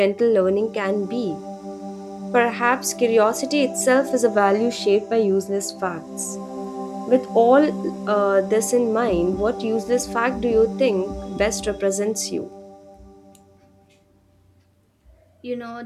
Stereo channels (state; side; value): identical; both; correlation 1.00